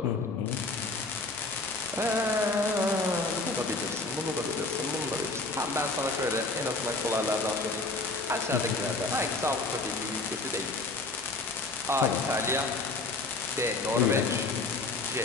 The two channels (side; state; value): right; quieter; 3.4 dB